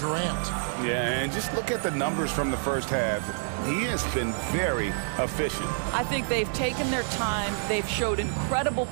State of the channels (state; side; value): silent; left; digital silence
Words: Yeah, and just look at the numbers from the first half. He has been very efficient. I think they've taken their time. They've showed incredible